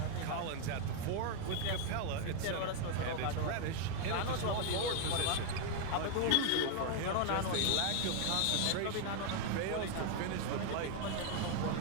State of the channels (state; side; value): different; both; correlation 0.00